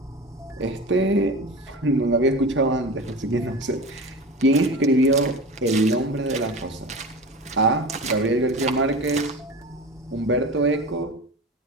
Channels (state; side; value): normal; both; correlation 0.31